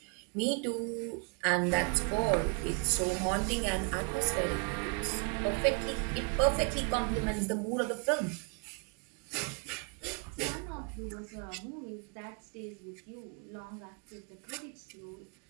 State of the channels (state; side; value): quieter; left; 34.9 dB